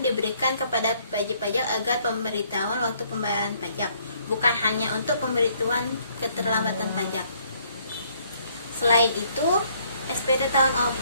diberikan kepada wajib pajak agar pemberitahuan waktu pembayaran pajak. bukan hanya untuk pemberitahuan keterlambatan pajak. Selain itu, SPT tahun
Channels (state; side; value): inverted; both; correlation -0.65